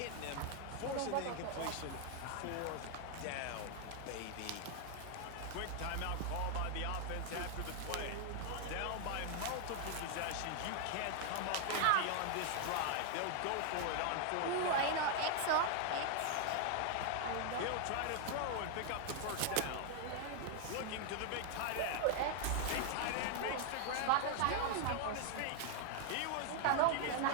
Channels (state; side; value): different; both; correlation 0.00